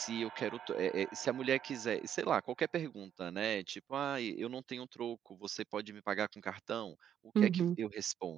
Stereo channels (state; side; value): quieter; left; 9.5 dB